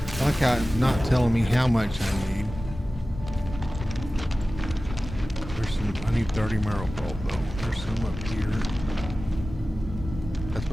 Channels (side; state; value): both; normal; correlation 0.96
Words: I like how it's not telling me how much I need. There's some, I need 30 marrow pulp though. There's some up here. That's